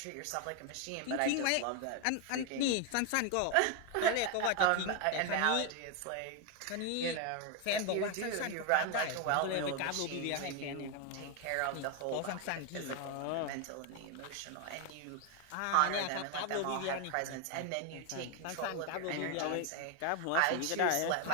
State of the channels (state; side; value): different; both; correlation 0.01